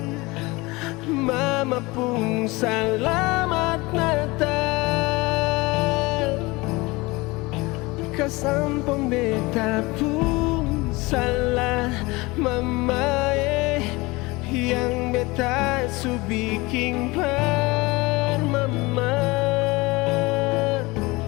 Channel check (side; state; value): right; quieter; 23.1 dB